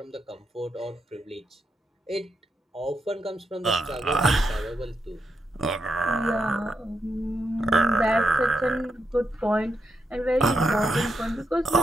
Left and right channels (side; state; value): both; normal; correlation 0.82